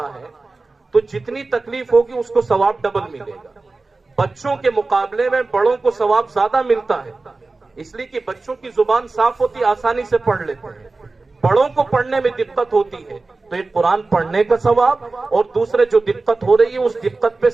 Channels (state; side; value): quieter; left; 3.6 dB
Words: ہے، تو جتنی تکلیف ہوگی اس کو ثواب ڈبل ملے گا. بچوں کے مقابلے میں بڑوں کو ثواب زیادہ ملتا ہے، اس لیے کہ بچوں کی زبان صاف ہوتی، آسانی سے پڑھ لیتے ہیں. بڑوں کو پڑھنے میں دقت ہوتی ہے، تو ایک قرآن پڑھنے کا ثواب اور دوسرے جو دقت ہو رہی ہے اس دقت پہ